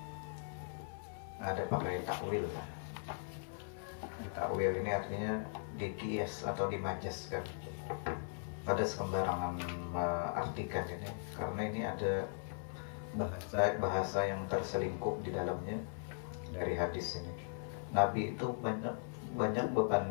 Ada pakai takwil kan? Takwil ini artinya dikias atau dimajaskan. Pada sembarangan artikan ini, karena ini ada bahasa yang terselingkup di dalamnya dari hadis ini. Nabi itu banyak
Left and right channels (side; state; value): right; silent; 52 dB below the other